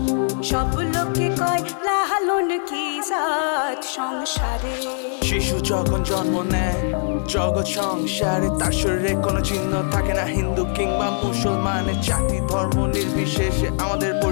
সব লোকে কয় লালন কি জাত সংসারে। শিশু যখন জন্ম নেয় জগৎ সংসারে, তার শরীরে কোনো চিহ্ন থাকে না হিন্দু কিংবা মুসলমানের। জাতি ধর্ম নির্বিশেষে আমাদের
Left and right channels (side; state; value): right; silent; digital silence